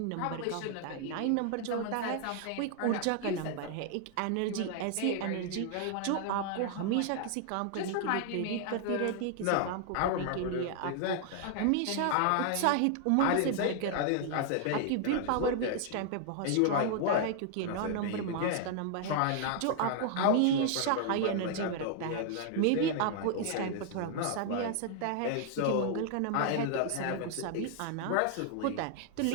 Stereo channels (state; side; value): different; both; correlation 0.00